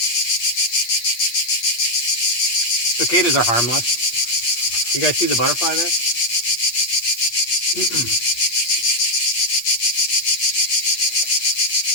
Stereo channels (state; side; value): late; right; 8.5 ms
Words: Cicadas are harmless. You guys see the butterfly there?